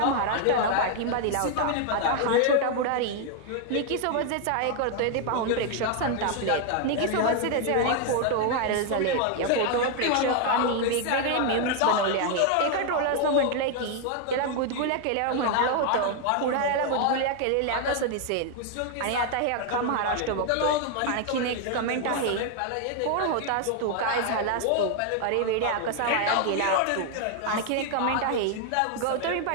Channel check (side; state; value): both; different; correlation 0.00